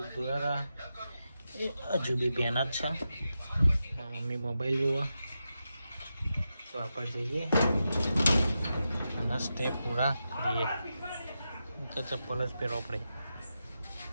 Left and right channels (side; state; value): both; inverted; correlation -0.89